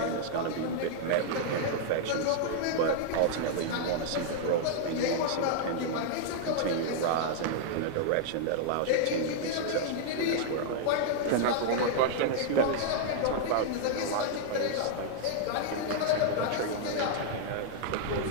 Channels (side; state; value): both; different; correlation -0.01